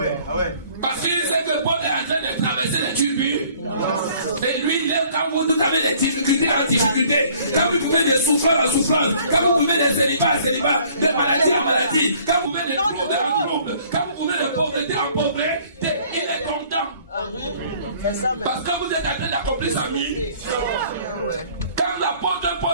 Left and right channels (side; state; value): both; inverted; correlation -0.56